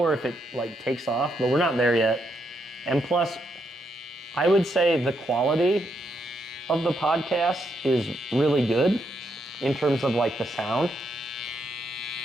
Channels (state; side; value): normal; both; correlation 0.78